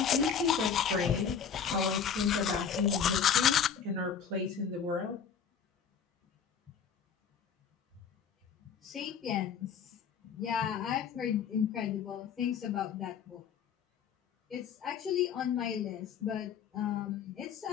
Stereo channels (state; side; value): quieter; right; 7.2 dB